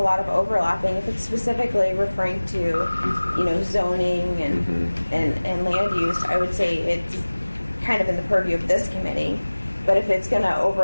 lot of overlapping. If it's specifically referring to, zoning and land use, I would say it's kind of in the purview of this committee. But if it's going to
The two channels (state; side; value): inverted; both; correlation -1.00